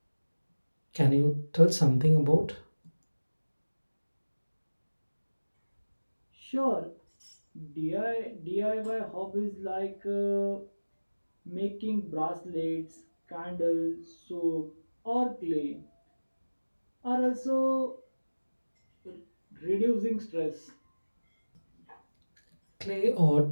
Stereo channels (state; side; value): inverted; both; correlation -1.00